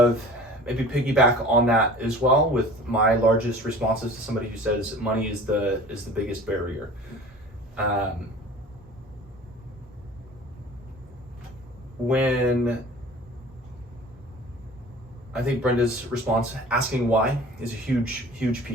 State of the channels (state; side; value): normal; both; correlation 0.43